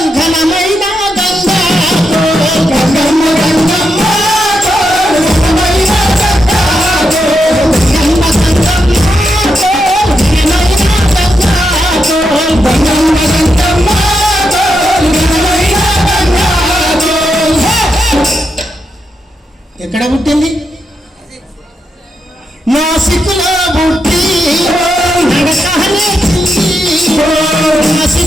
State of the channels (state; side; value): normal; both; correlation 0.84